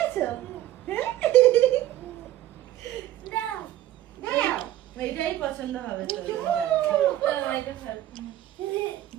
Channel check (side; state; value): left; quieter; 13.6 dB